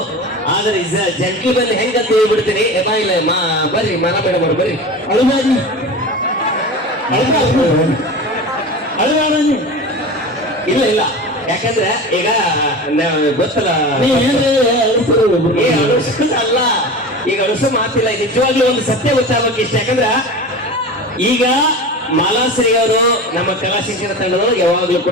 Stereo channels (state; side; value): normal; both; correlation 0.31